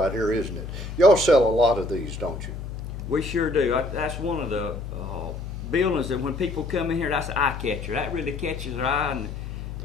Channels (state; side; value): noise; left; hum, 8 dB below the sound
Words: here, isn't it? Y'all sell a lot of these, don't you? We sure do. That's one of the buildings that when people come in here, that's an eye catcher. That really catches their eye,